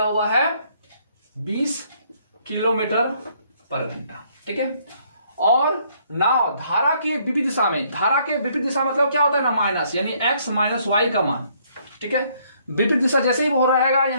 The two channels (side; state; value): both; inverted; correlation -0.67